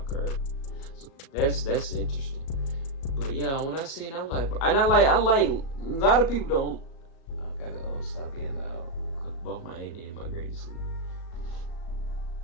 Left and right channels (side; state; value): right; late; 37 ms